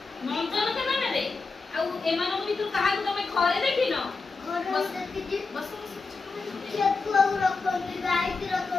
नंदन कानन रे आ एमानो भितर कहा को तमे घरे देखिनो बस देखि बस खेत को रखंदी गाय की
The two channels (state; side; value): quieter; right; 4.2 dB